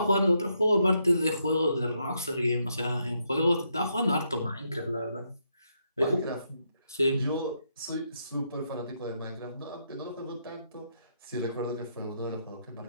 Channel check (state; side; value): inverted; both; correlation -0.78